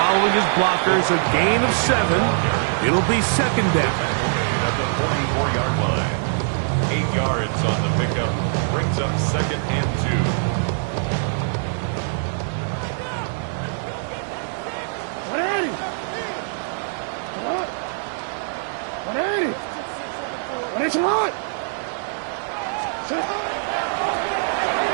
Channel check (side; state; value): left; silent; digital silence